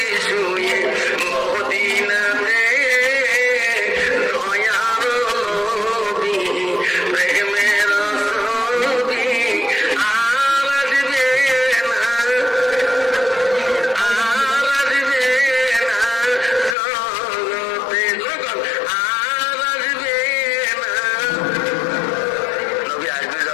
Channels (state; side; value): drops out; right; at 16.8 s